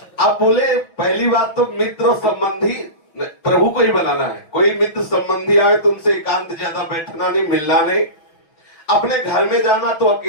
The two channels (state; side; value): late; right; 5.8 ms